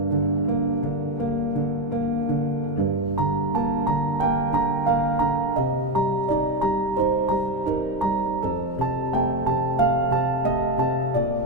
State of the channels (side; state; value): both; normal; correlation 0.12